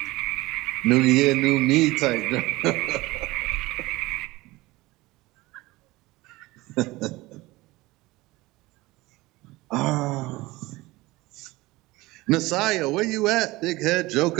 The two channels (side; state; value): left; quieter; 20.3 dB